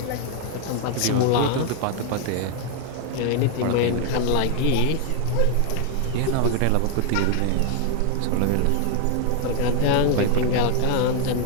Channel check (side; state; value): both; different; correlation 0.00